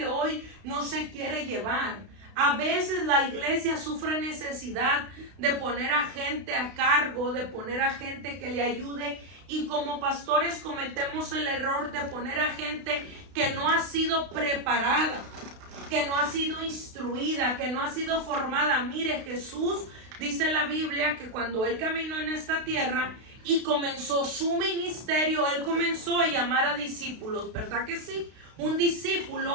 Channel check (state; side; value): late; left; 32 ms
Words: hoy no se quiere llevar. A veces la iglesia sufre necesidad de poner a gente a cargo, de poner a gente que le ayude, y como pastores cometemos el error de poner a gente que no ha sido preparada, que no ha sido instruida, que no ha sido formada. Mire, Jesús, dice la Biblia, que cuando él caminó en esta tierra y comenzó su ministerio, él comenzó a llamar a discípulos, ¿verdad que sí? Un